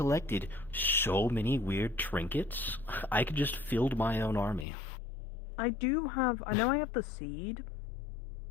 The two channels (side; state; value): right; drops out; at 4.7 s